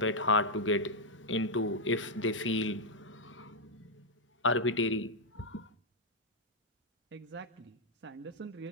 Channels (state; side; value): normal; both; correlation -0.02